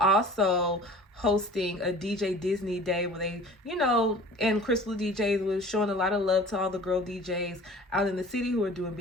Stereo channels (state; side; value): normal; both; correlation 0.44